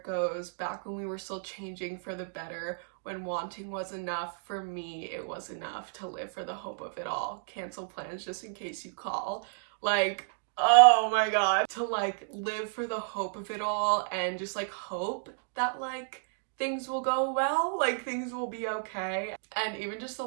goes, "Back when we were still changing for the better, when wanting was enough, for me it was enough to live for the hope of it all. Cancel plans just in case you call." Like, oh my god. To like live for the hope of it all and just like hope that like things will go well, like things will be okay. And even just the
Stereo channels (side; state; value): left; silent; digital silence